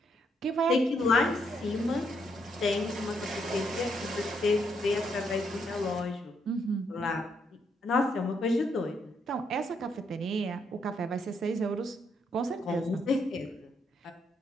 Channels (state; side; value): normal; both; correlation 0.75